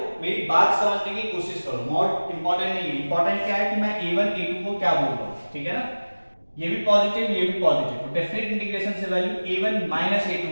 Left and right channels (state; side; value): inverted; both; correlation -1.00